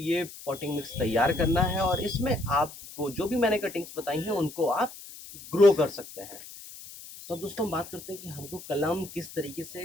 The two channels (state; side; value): noise; left; hiss, 15 dB below the sound